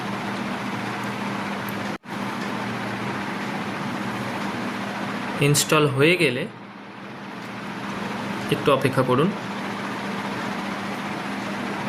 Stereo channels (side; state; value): both; identical; correlation 1.00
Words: ইনস্টল হয়ে গেলে একটু অপেক্ষা করুন।